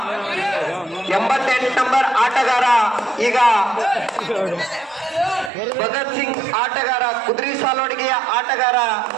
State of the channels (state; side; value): drops out; left; at 5.5 s